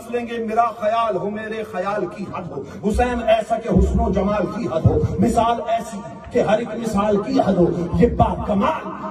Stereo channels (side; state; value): both; identical; correlation 1.00